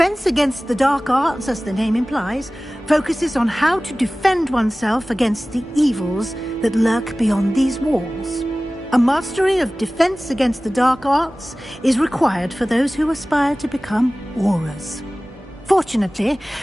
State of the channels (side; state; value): both; normal; correlation 0.97